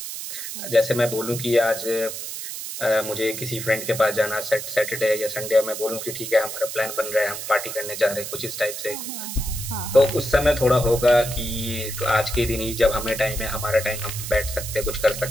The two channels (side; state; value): right; noise; hiss, 7 dB below the sound